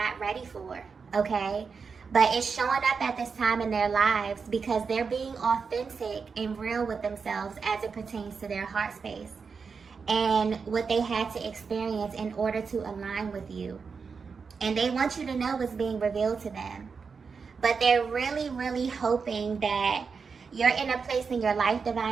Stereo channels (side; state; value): left; quieter; 5.4 dB